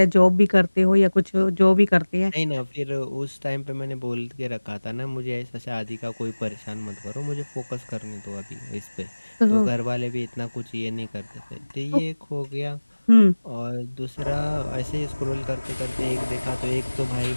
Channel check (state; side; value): inverted; both; correlation -1.00